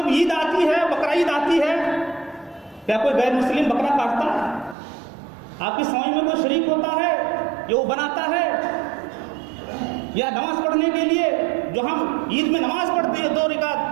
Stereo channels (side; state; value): left; drops out; at 4.8 s